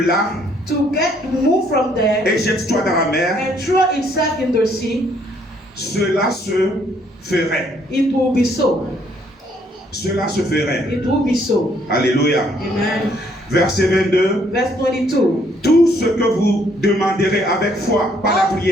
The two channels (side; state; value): both; normal; correlation 0.67